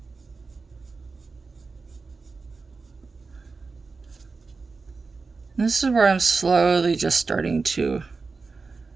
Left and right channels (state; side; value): quieter; left; 4.3 dB